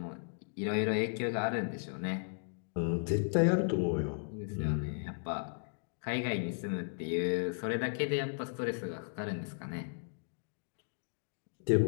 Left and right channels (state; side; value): silent; right; digital silence